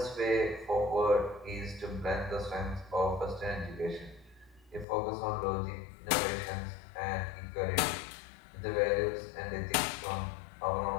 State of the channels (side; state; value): right; drops out; at 4.9 s